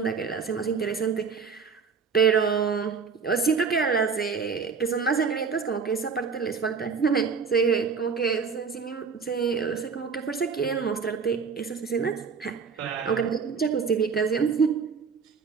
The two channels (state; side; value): quieter; left; 5.6 dB